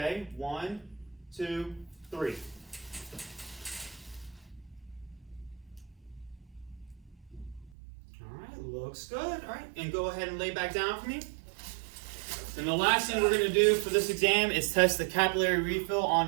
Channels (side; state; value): left; drops out; at 7.7 s